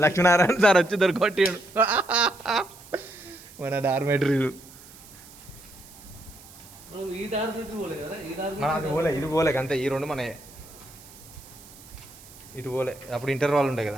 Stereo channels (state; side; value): noise; right; hiss, 20 dB below the sound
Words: లక్ష్మీనారాయణ సార్ వచ్చి దొరికొట్టాడు. మన డార్మెటరీలు. అది పోలే, ఇది పోలే అంతే. ఈ రెండు మన ఇటు పోలే. అప్పుడు ఇంటర్వాల్ ఉంటాయి